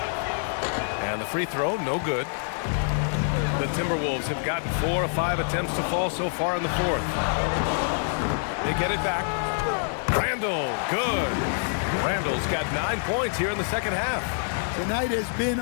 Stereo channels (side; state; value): right; silent; 58 dB below the other